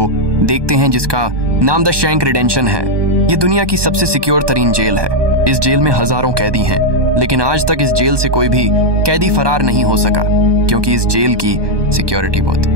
देखते हैं जिसका नाम द शैंक रिडेंशन है। ये दुनिया की सबसे सिक्योर तरीन जेल है। इस जेल में हजारों कैदी हैं, लेकिन आज तक इस जेल से कोई भी कैदी फरार नहीं हो सका, क्योंकि इस जेल की सिक्योरिटी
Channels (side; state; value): left; late; 1.2 ms